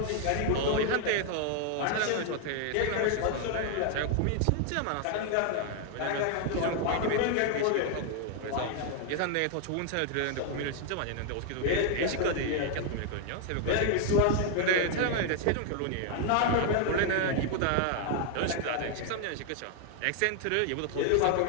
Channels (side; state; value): both; different; correlation 0.00